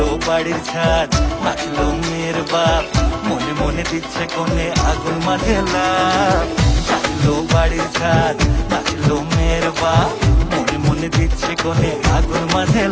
বাড়ির ছাদ, নাচলো মেয়ের বাপ, মনে মনে দিচ্ছে কোণে আগুন মাঝে লাভ। নাচলো বাড়ির ছাদ, নাচলো মেয়ের বাপ, মনে মনে দিচ্ছে কোণে আগুন মাঝে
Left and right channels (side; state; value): both; identical; correlation 1.00